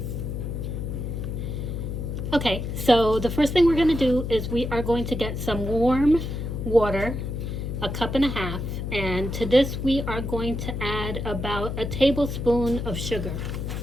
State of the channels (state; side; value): noise; left; hum, 4 dB below the sound